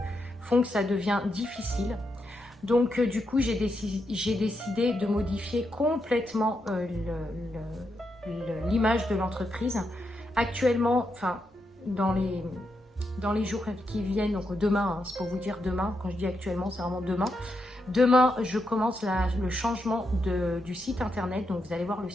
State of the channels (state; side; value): normal; both; correlation 0.83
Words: font que ça devient difficile. Donc du coup, j'ai décidé de modifier complètement l'image de l'entreprise. Actuellement, enfin, dans les jours qui viennent, donc demain, hein, c'est pour vous dire demain, quand je dis actuellement, c'est vraiment demain. Demain, je commence le changement du site internet, donc vous allez voir, le